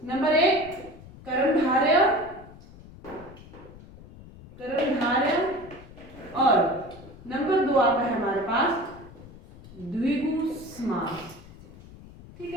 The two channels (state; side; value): noise; left; rumble, 19 dB below the sound